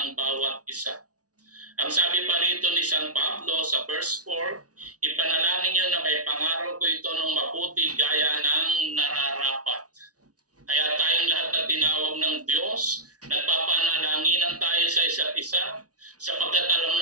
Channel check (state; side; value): late; left; 0.68 ms